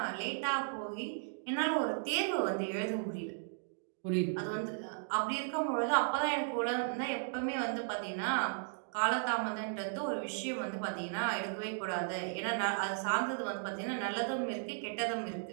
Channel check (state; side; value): silent; left; digital silence